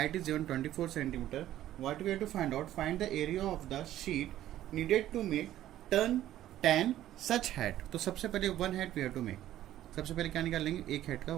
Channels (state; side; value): quieter; left; 13.1 dB